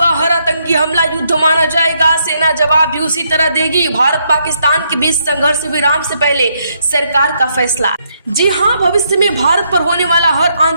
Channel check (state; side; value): inverted; both; correlation -0.75